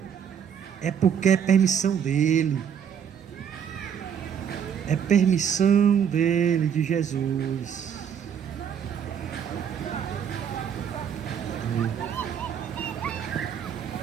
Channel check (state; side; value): quieter; left; 8.1 dB